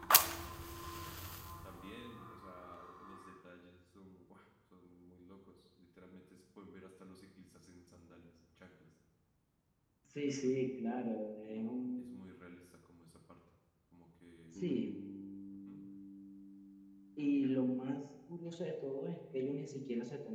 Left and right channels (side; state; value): both; identical; correlation 1.00